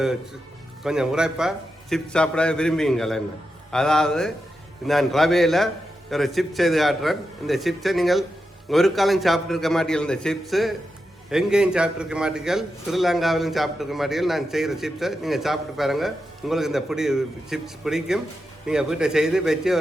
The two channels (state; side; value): normal; both; correlation 0.88